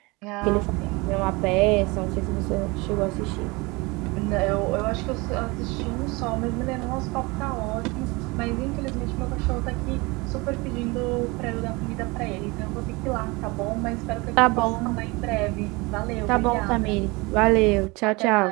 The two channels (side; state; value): left; quieter; 25.2 dB